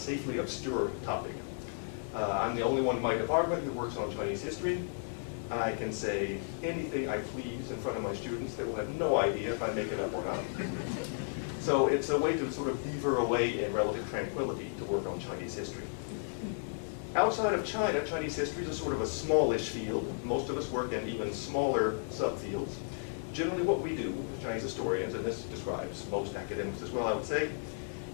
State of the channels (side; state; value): right; silent; digital silence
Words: obscure topic. I'm the only one in my department who works on Chinese history. I can say anything I please in front of my students. They will have no idea if I make it up or not. So it's a way to sort of beaver away in relative tranquility to work on Chinese history. Outside of China, Chinese history is a sort of a smallish field. Most of us work in even smaller subfields. Generally what we do as Chinese historians, and this describes most academics as well, I would say,